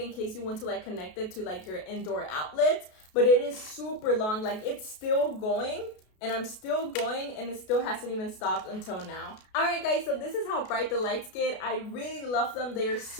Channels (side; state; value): right; late; 33 ms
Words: case you want to like connect it to like your indoor outlet, but it is super long, like it's still going. And I'm still going and it still hasn't even stopped until now. Alright guys, so this is how bright the lights get. I really love them. They're